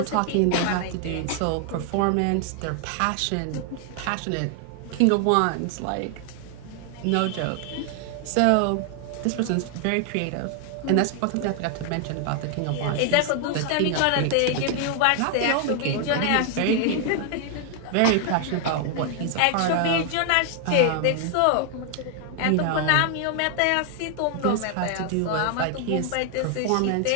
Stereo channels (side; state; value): both; different; correlation 0.00